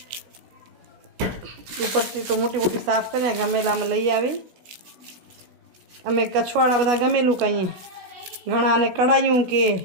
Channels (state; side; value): late; left; 16 ms